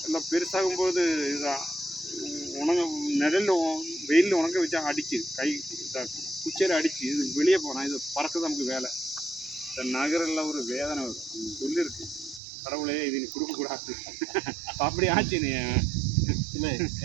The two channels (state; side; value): drops out; left; at 12.4 s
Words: எல்லாம் பெருசாகும்போது இதான் நிழலில் வெயிலில் உணங்க வச்சா அடிச்சு கை இதாக்கும், குச்சியில் அடிச்சு இது வெளியே போனால் இது பறக்குது நமக்கு வேலை. இந்த நகரெல்லாம் ஒரு வேதனை வரும். சொல்லியிருக்கு கடவுளே இது நீ கொடுக்கக்கூடாது. அப்படி ஆச்சு. நீ இல்லை,